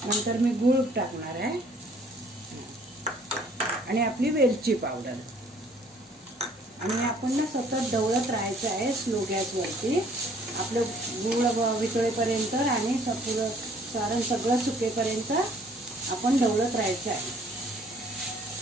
नंतर मी गूळ टाकणार आहे आणि आपली वेलची पावडर, आणि आपण ना सतत ढवळत राहायचं आहे स्लो गॅसवरती, आपलं गूळ वितळेपर्यंत आणि पुरं सारण सगळं सुकेपर्यंत आपण ढवळत राहायचं आहे।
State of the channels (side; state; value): both; normal; correlation 0.59